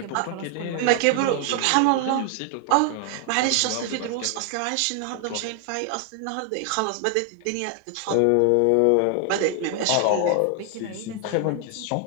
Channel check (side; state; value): both; different; correlation 0.00